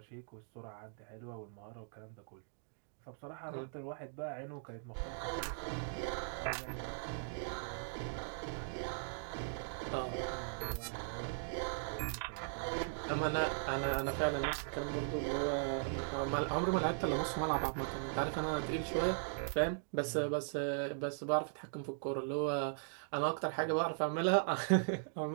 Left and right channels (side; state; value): left; silent; digital silence